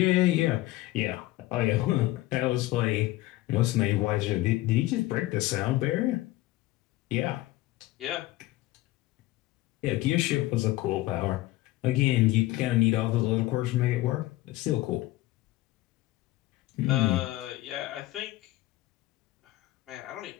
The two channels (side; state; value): right; quieter; 17.4 dB